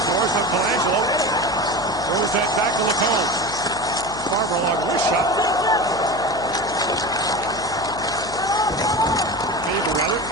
Morris on Colangelo. Throws that back to Lacombe. Farmer along wrist shot. Faber, rather,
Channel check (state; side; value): noise; left; hum, 15 dB below the sound